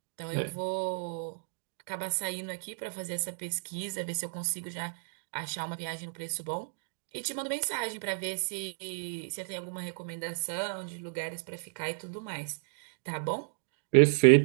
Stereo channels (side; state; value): left; silent; digital silence